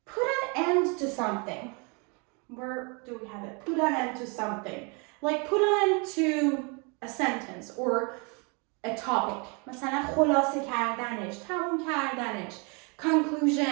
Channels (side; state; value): left; quieter; 32.8 dB